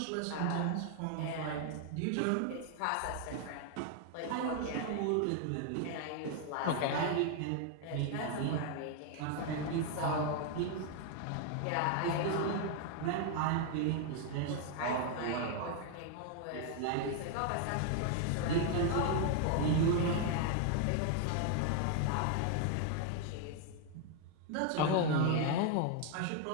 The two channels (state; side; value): different; both; correlation 0.00